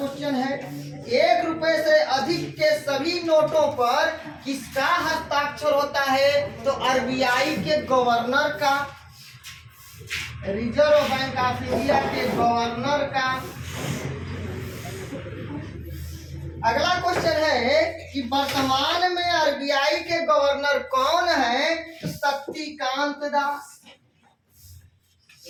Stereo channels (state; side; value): identical; both; correlation 1.00